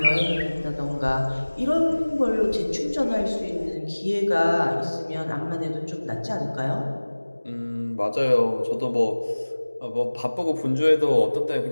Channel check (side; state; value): both; inverted; correlation -1.00